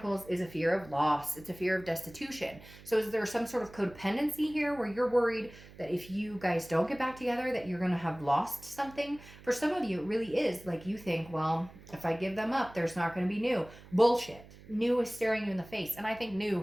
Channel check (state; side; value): noise; right; hum, 20 dB below the sound